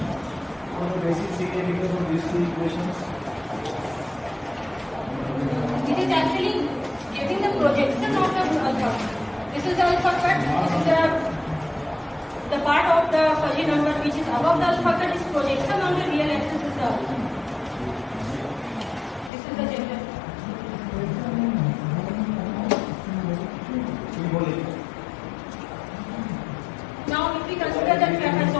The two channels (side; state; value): right; drops out; at 19.3 s